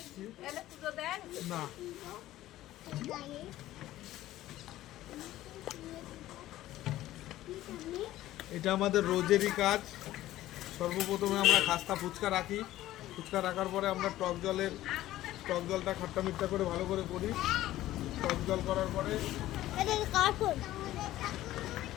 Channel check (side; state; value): right; quieter; 14.8 dB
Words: না। এটা আমাদের রোজেরই কাজ। সর্বপ্রথমে আমরা খাস্তা ফুচকা রাখি। ফুচকা রাখার পরে আমরা টক জলটা খাট্টা মিঠা করে ভালো করে করি। টক জল করার পরে